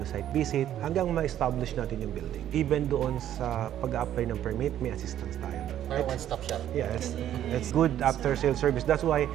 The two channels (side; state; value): left; quieter; 11.3 dB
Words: site visit, hanggang ma-establish natin yung building. Even doon sa pag-apply ng permit, may assistance tayo. Or one-stop shop. Yes, it's good after-sales service. That's why